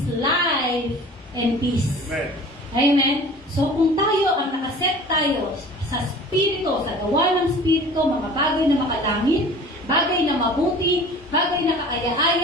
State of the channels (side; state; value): both; normal; correlation 0.43